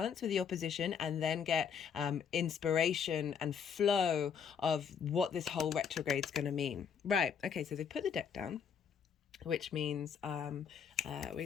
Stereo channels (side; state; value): right; quieter; 7.2 dB